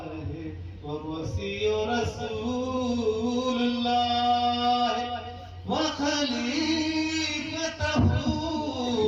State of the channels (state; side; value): identical; both; correlation 1.00